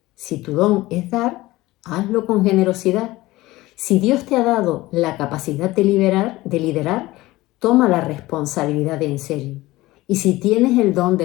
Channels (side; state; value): right; quieter; 18.6 dB